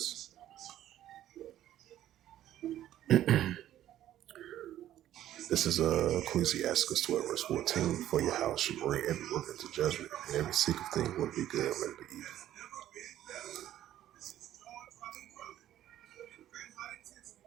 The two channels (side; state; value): left; quieter; 12.4 dB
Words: This is Ecclesiastes 12, verse 14. For your house should bring every work into judgment, and every secret thing will be good, let it be evil.